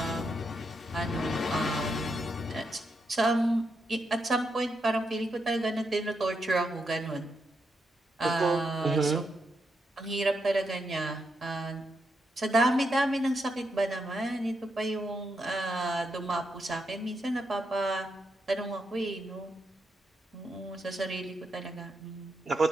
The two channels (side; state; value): both; normal; correlation 0.82